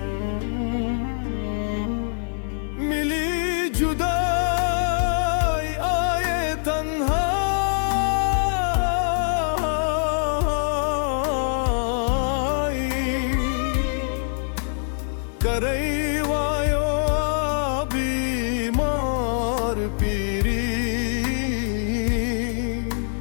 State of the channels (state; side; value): silent; right; digital silence